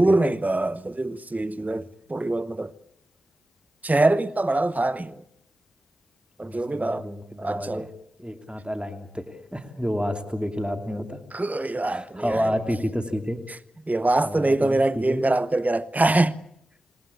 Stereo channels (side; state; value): both; normal; correlation 0.95